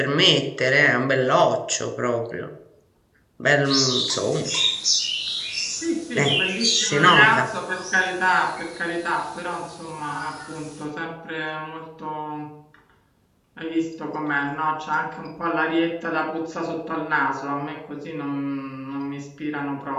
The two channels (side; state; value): both; identical; correlation 1.00